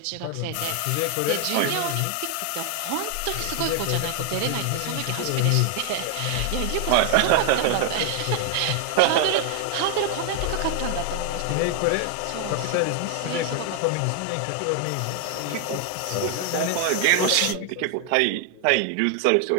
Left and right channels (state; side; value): different; both; correlation 0.00